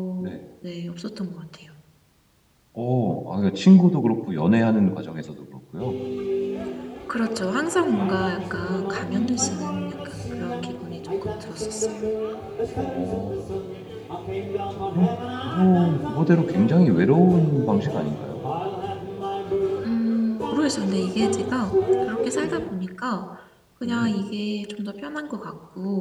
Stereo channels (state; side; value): identical; both; correlation 1.00